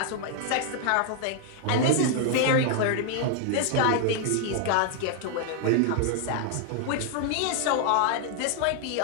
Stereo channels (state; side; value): different; both; correlation 0.00